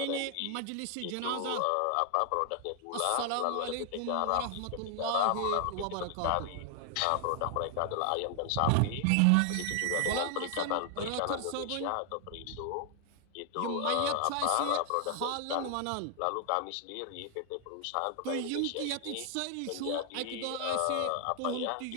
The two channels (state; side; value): different; both; correlation 0.00